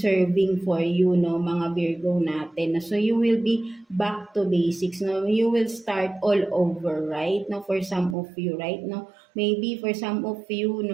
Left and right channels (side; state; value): left; drops out; at 8.2 s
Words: for you, no, mga Virgo natin. So you will be back to basics, no. You will start all over, right? No, for some of you, right? No, maybe for some of you,